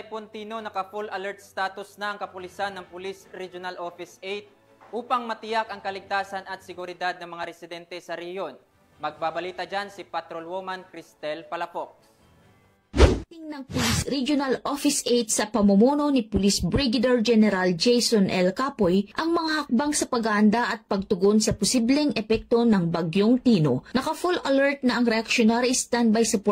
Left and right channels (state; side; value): identical; both; correlation 1.00